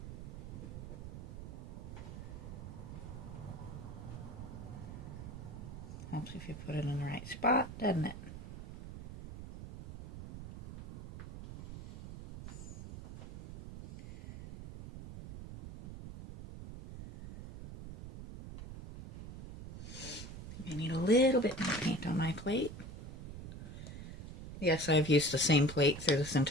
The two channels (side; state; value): right; noise; rumble, 10 dB below the sound